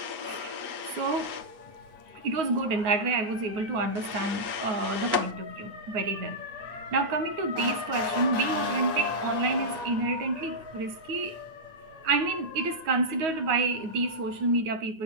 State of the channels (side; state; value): left; late; 9.3 ms